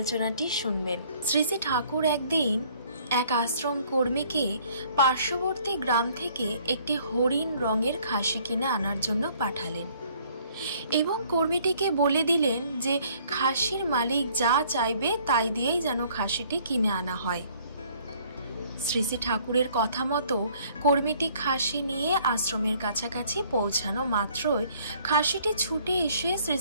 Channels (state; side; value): inverted; both; correlation -0.60